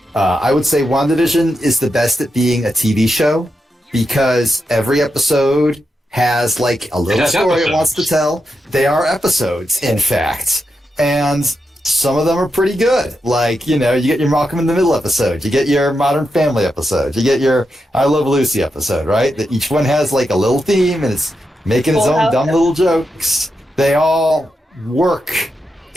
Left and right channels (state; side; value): normal; both; correlation 0.86